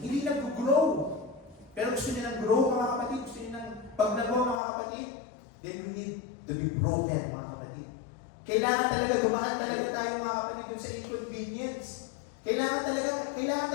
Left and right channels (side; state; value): right; drops out; at 4.6 s